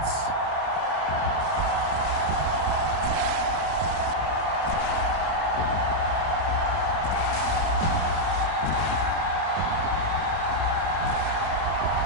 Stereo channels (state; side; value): late; left; 31 ms